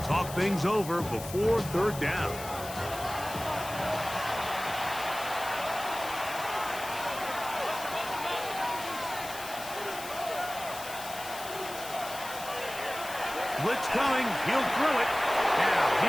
talk things over before 3rd down. Blitz coming. He'll throw it. Now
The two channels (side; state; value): left; noise; hiss, 12 dB below the sound